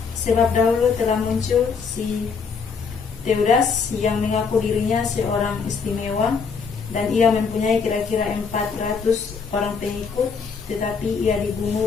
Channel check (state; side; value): quieter; right; 5.5 dB